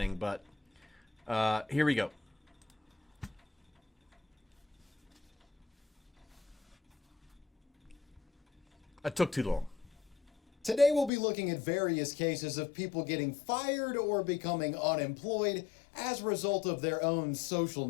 but here we go. I took too long. Today we'll be looking at various cases of people getting fired or becoming unemployed as a result of their own social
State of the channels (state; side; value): drops out; right; at 11.1 s